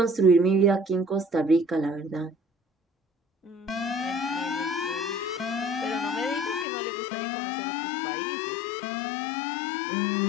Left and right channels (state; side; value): drops out; right; at 6.7 s